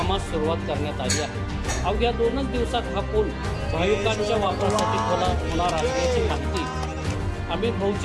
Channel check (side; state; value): both; identical; correlation 1.00